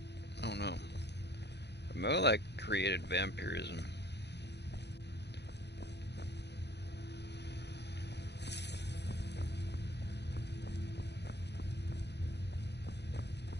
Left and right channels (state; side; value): late; right; 0.50 ms